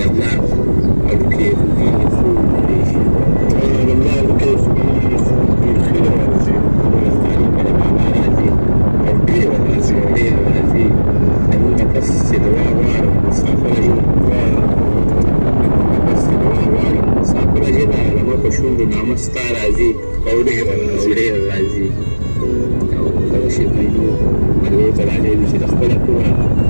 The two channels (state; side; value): inverted; both; correlation -1.00